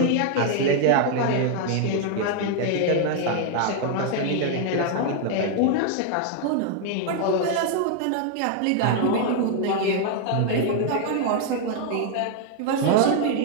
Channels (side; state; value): both; different; correlation 0.00